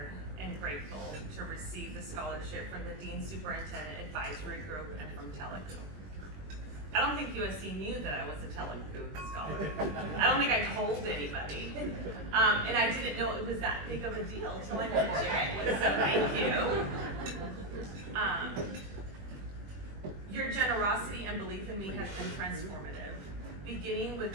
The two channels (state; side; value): late; left; 21 ms